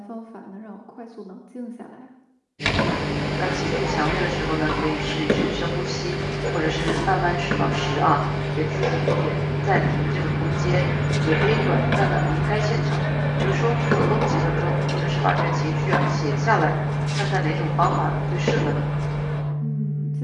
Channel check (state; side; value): identical; both; correlation 1.00